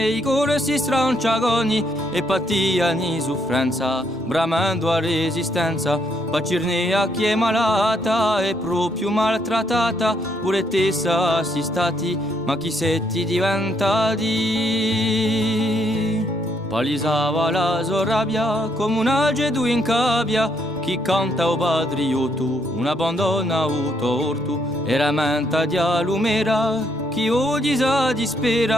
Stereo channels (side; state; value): both; normal; correlation 0.73